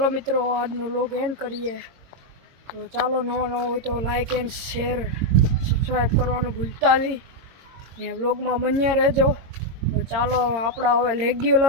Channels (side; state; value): left; late; 22 ms